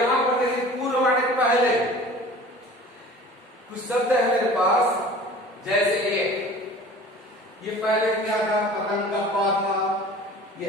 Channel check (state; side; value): normal; both; correlation 0.43